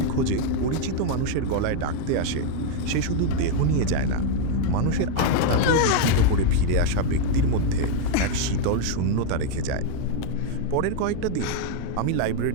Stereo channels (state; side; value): different; both; correlation 0.00